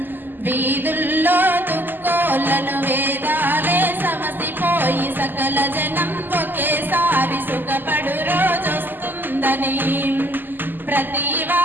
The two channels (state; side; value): late; left; 0.091 ms